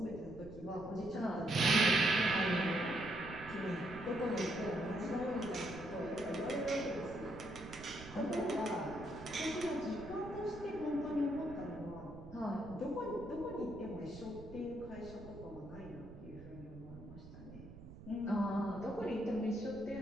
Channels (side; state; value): right; noise; rumble, 15 dB below the sound